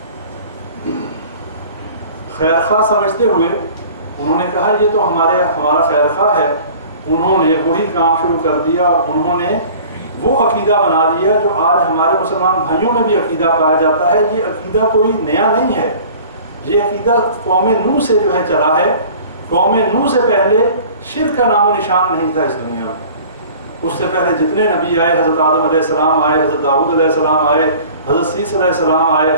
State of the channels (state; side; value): inverted; both; correlation -0.46